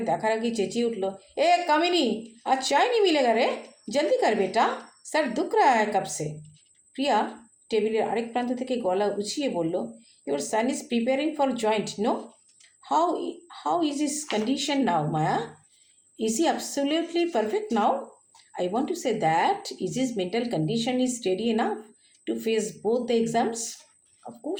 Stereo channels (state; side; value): identical; both; correlation 1.00